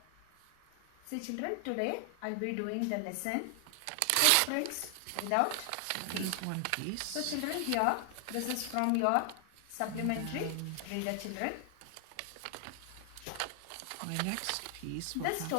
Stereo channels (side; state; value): both; different; correlation 0.00